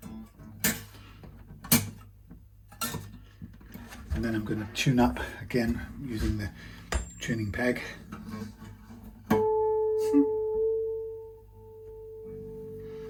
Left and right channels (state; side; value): identical; both; correlation 1.00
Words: And then I'm going to tune up again using the tuning peg.